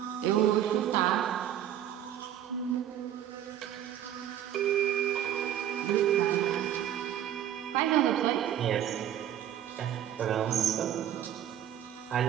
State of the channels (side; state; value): left; quieter; 10.8 dB